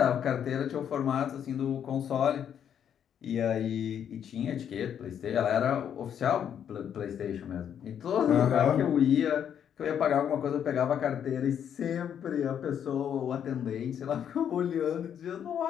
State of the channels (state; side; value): quieter; right; 8.9 dB